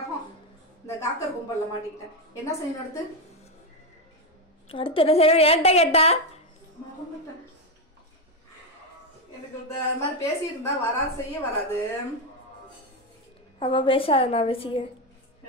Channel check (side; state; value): both; normal; correlation 0.08